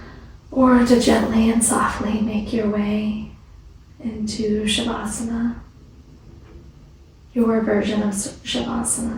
Or to gently and softly make your way into Shavasana, your version of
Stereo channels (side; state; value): both; identical; correlation 1.00